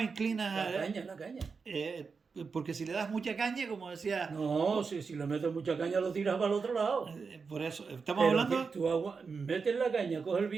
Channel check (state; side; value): quieter; left; 5.1 dB